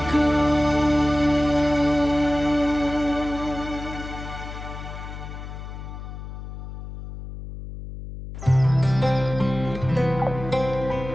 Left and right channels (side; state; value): left; noise; hum, 10 dB below the sound